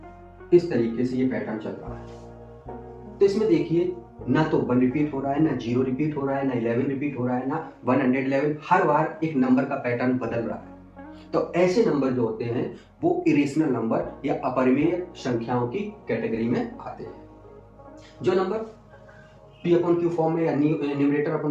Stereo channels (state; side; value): identical; both; correlation 1.00